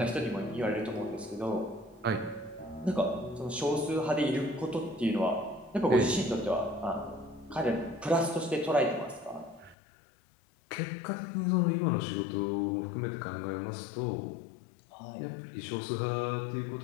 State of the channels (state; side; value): drops out; right; at 9.8 s